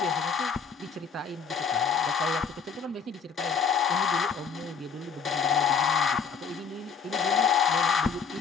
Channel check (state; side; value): quieter; right; 6.1 dB